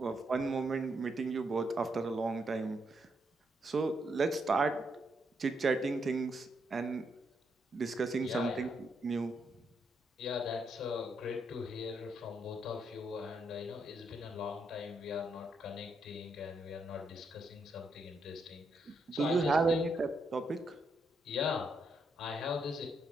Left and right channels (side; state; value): both; normal; correlation 0.78